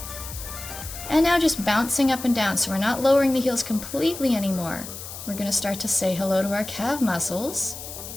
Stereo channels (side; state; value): left; noise; hiss, 11 dB below the sound